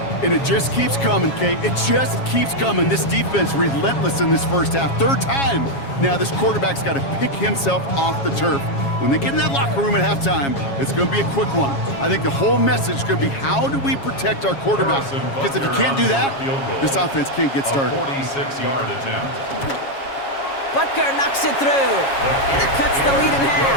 And it just keeps coming, Kate. It just keeps coming. This defense relentless in this first half. Third time. Now this quarterback's got to pick himself off the turf. When they get in that locker room at halftime, it's going to be a quick one. I think the whole message is going to be, how do we protect our quarterback? Because if you can't do that, this offense can't get started. 46-yard attempt. Butker knocks it through. And it cuts the lead in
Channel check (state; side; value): late; right; 7.3 ms